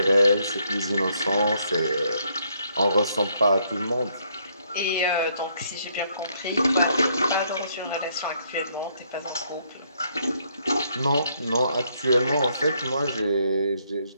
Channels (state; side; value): inverted; both; correlation -0.71